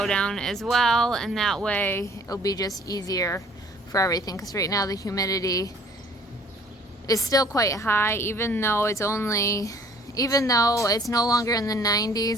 down as well, and that way it'll be just easier for everything, because right now the humidity is still quite high, even though it's no longer in the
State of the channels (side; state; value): both; normal; correlation 0.56